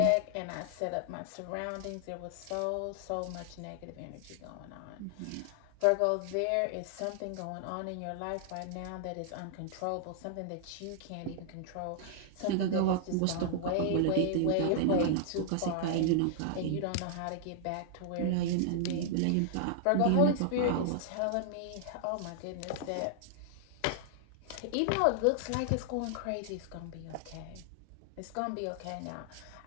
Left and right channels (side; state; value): both; different; correlation -0.01